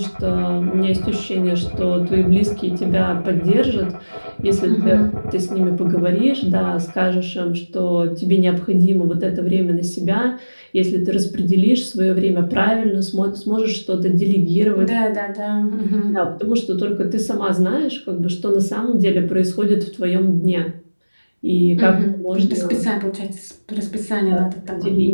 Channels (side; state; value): both; inverted; correlation -1.00